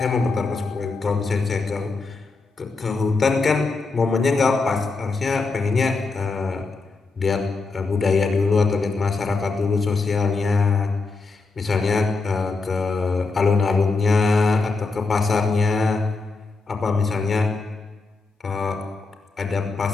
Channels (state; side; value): quieter; right; 3.9 dB